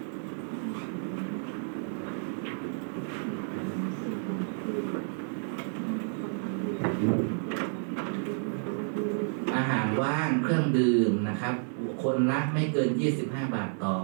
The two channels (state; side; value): silent; left; 58 dB below the other